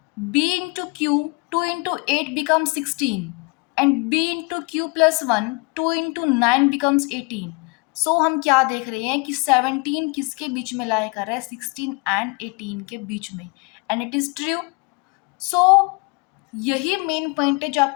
b into q, 2 into 8 becomes 16 and b into q plus 1, 2 into 9 becomes 18. So हम क्या देख रहे हैं कि 17 किसके बीच में लाई कर रहा है, 16 and 18 के बीच में, and it is true. So यही मेन पॉइंट है जो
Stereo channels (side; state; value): right; quieter; 30.6 dB